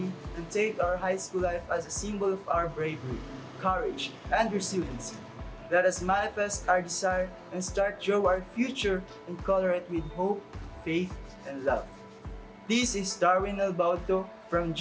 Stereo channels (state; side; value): identical; both; correlation 1.00